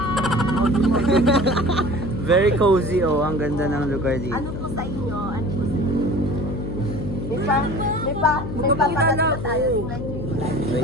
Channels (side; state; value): left; noise; hum, 6 dB below the sound